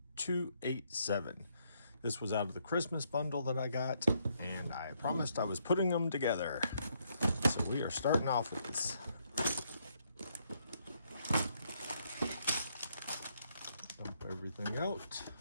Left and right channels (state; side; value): inverted; both; correlation -0.73